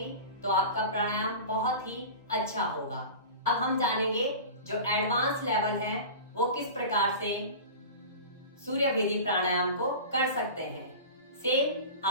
तो आपका प्राणायाम बहुत ही अच्छा होगा। अब हम जानेंगे जो एडवांस लेवल है वो किस प्रकार से सूर्य भेदी प्राणायाम को कर सकते हैं। सेम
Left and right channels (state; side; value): inverted; both; correlation -0.33